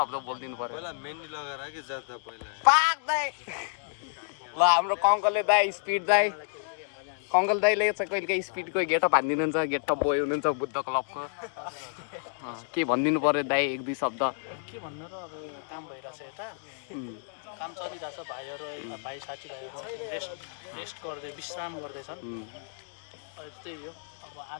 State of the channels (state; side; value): silent; right; digital silence